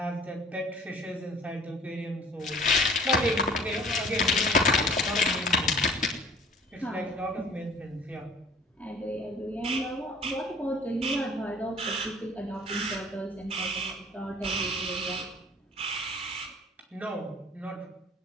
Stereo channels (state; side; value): normal; both; correlation 0.51